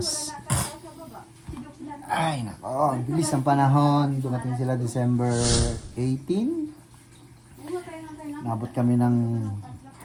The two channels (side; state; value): both; identical; correlation 1.00